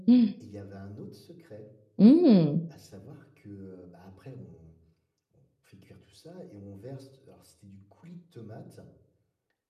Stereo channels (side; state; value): both; identical; correlation 1.00